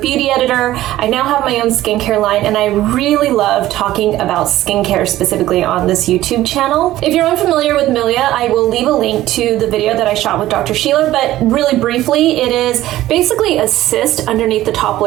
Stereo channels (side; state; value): left; quieter; 14.9 dB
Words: editor. I now have my own skincare line, and I really love talking about skincare specifically on this YouTube channel. If you're unfamiliar with Milia, I will leave a link to the video that I shot with Dr. Sheila, but really briefly, it is basically a cyst underneath the top